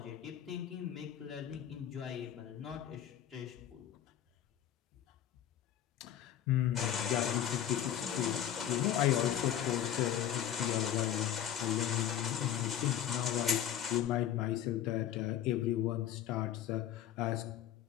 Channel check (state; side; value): quieter; right; 10.6 dB